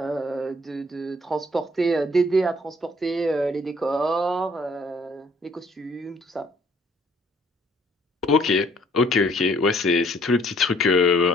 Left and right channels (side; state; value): both; normal; correlation 0.62